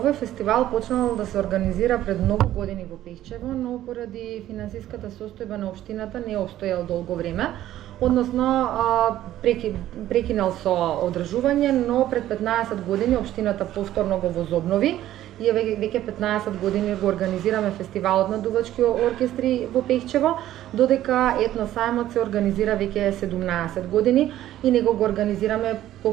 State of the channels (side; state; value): left; quieter; 13.2 dB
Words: фестивал почнал да се организира пред многу години во Пехчево, но поради финансиската состојба на општината не обстојал долго време. Односно, прекинал со одржување, но пред 15 години општината повторно го возобнови и веќе 15 години го организираме фестивалот на дувачки оркестри во Пехчево, додека етносајмот се организира веќе 17 години и него го организираме